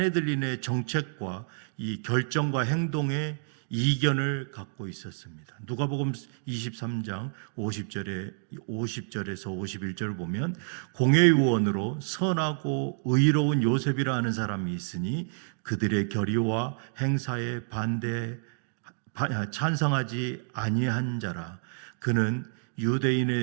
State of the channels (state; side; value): silent; left; digital silence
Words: 정책과 이 결정과 행동에 이견을 갖고 있었습니다. 누가복음 23장 50절에서 51절을 보면 공회의원으로 선하고 의로운 요셉이라 하는 사람이 있으니 그들의 결의와 행사에 찬성하지 아니한 자라. 그는